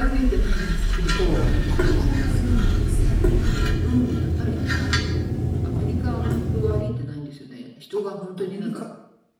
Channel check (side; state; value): both; identical; correlation 1.00